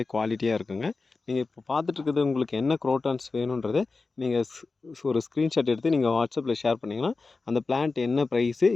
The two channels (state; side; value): quieter; right; 4.0 dB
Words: குவாலிட்டியா இருக்குங்க. நீங்க இப்போ பார்த்துட்டு இருக்கிறது உங்களுக்கு என்ன குரோட்டான்ஸ் வேணுன்றத நீங்க ஒரு ஸ்க்ரீன்ஷாட் எடுத்து நீங்க வாட்ஸ்அப்பில் ஷேர் பண்ணிங்கன்னா, அந்த பிளான்ட் என்ன ப்ரைஸு,